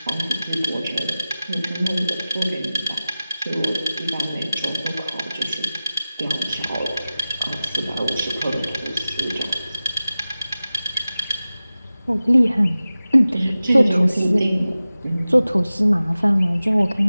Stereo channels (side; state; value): both; inverted; correlation -0.96